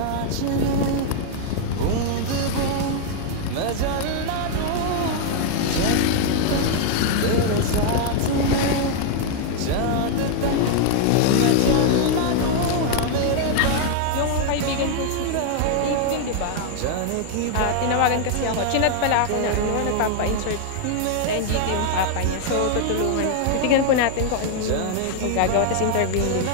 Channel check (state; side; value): different; both; correlation 0.00